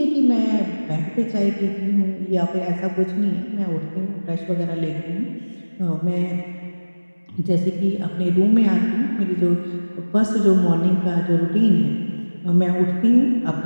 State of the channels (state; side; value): inverted; both; correlation -1.00